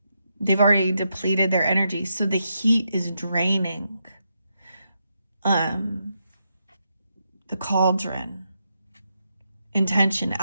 they've already depleted their energy. So the heat is draining the cauldron. Intention,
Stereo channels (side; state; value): both; inverted; correlation -0.83